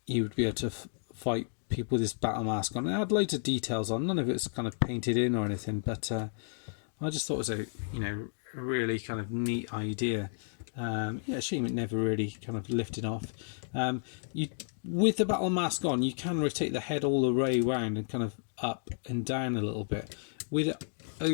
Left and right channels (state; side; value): silent; right; digital silence